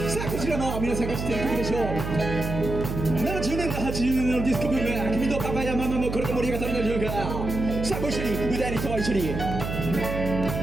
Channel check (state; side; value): noise; right; hum, 5 dB below the sound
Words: あこちらもさあ皆さんが知っている曲でしょう。70年代80年代のディスコブーム、君とパパやママもこれで盛り上がったのでしょうか。さあご一緒に歌いに人は一緒に。